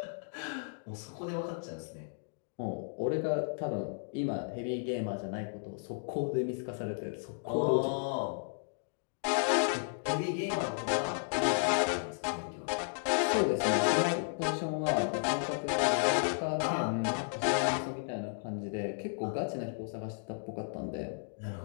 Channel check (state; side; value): silent; right; digital silence